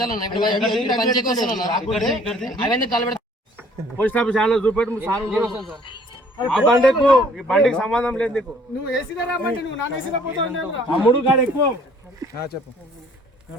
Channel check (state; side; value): normal; both; correlation 0.57